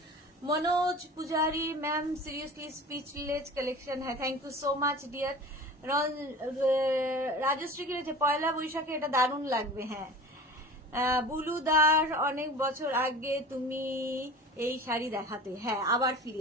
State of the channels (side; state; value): both; normal; correlation 0.38